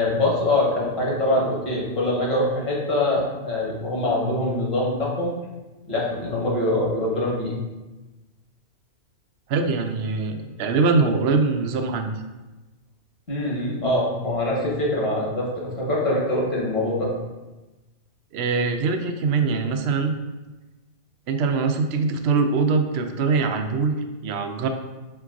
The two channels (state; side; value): late; left; 3.0 ms